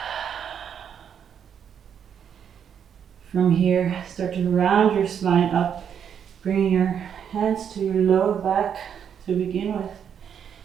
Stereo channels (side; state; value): left; quieter; 8.2 dB